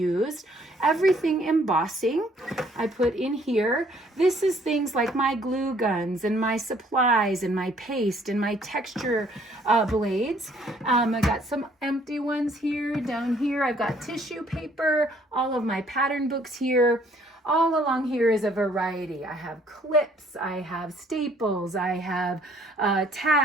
Everything embossing I put in here. This is things like my glue guns and my supplies and my paste and my texture blades. I got some empty ones here. Down here I've got tissue paper, all of my pattern books here. All along here is a variety. I have clips, I have staples, I have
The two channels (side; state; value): both; normal; correlation 0.62